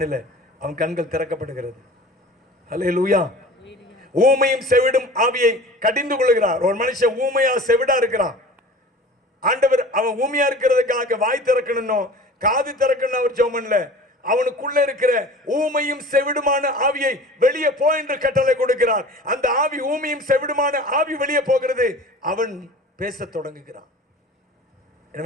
அவன் கண்கள் திறக்கப்படுகிறது. அல்லேலூயா. ஊமையும் செவிடும் ஆவியை கடிந்து கொள்கிறார். ஒரு மனுஷன் ஊமையா செவிடா இருக்கிறான். ஆண்டவர் அவன் ஊமையா இருக்கிறதுக்காக வாய் திறக்கணும், காது திறக்கணும் அவர் ஜெபம் பண்ணல. அவனுக்குள்ள இருக்கிற ஊமையும் செவிடுமான ஆவியை வெளியே போ என்று கட்டளை கொடுக்கிறார். அந்த ஆவி, ஊமையும் செவிடுமான ஆவி வெளியே போகிறது. அவன் பேச தொடங்குகிறான்.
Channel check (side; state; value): both; normal; correlation 0.41